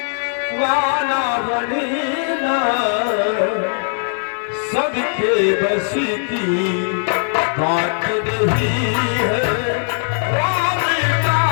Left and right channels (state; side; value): silent; right; 63 dB below the other